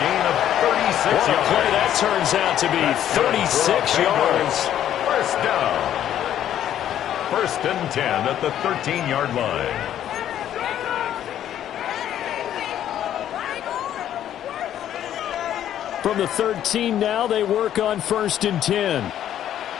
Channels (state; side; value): quieter; right; 11.0 dB